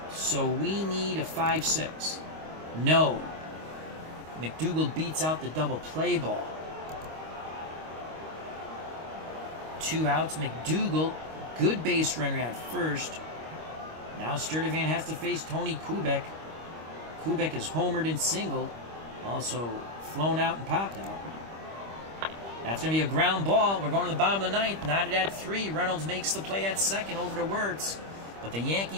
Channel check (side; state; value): left; late; 25 ms